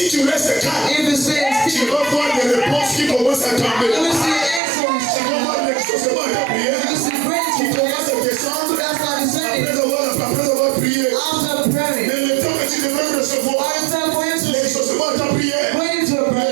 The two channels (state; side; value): drops out; left; at 4.6 s